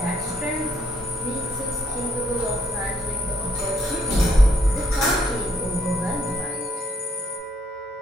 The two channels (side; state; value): both; normal; correlation 0.69